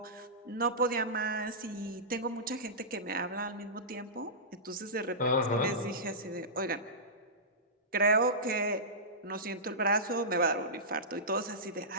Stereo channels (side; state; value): both; normal; correlation -0.17